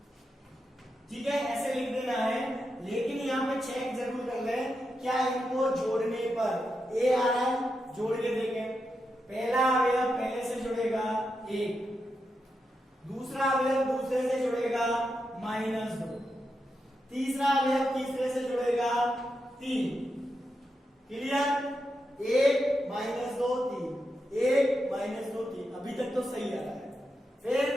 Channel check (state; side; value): normal; both; correlation 0.86